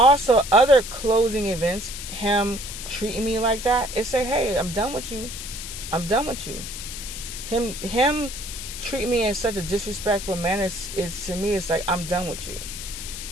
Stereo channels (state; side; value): noise; left; hiss, 9 dB below the sound